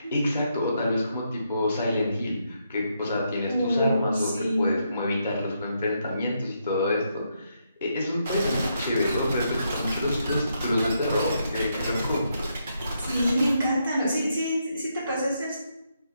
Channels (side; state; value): both; inverted; correlation -0.79